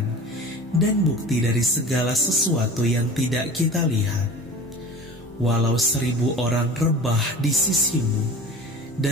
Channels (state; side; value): normal; both; correlation 0.38